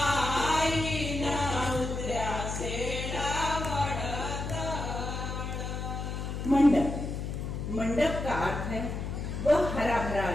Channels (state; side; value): noise; left; hum, 4 dB below the sound